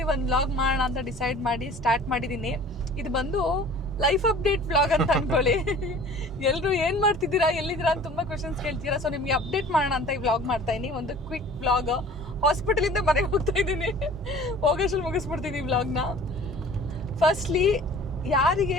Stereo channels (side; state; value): both; normal; correlation 0.46